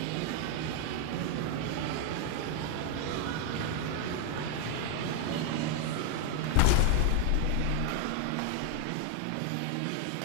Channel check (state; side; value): different; both; correlation 0.00